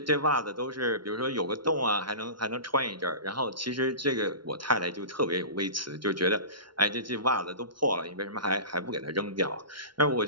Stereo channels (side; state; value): left; late; 0.73 ms